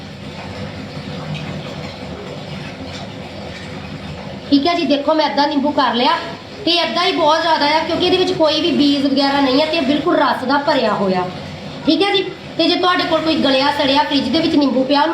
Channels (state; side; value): identical; both; correlation 1.00